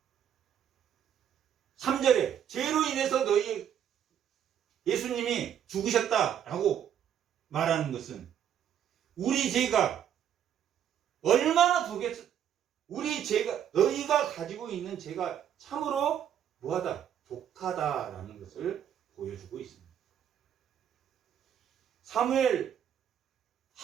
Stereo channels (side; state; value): left; quieter; 9.6 dB